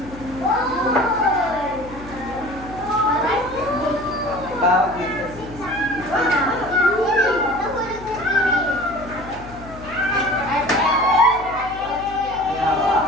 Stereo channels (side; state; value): left; noise; hum, 16 dB below the sound